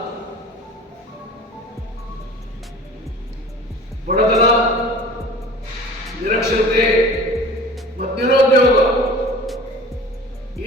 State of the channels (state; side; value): normal; both; correlation 0.41